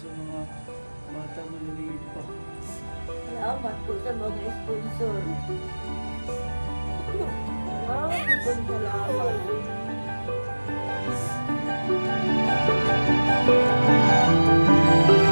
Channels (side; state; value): both; inverted; correlation -1.00